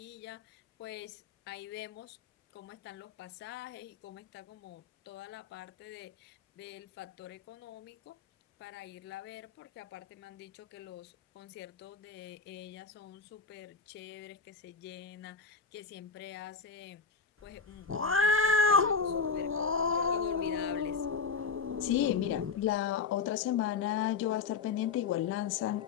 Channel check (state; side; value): quieter; right; 5.4 dB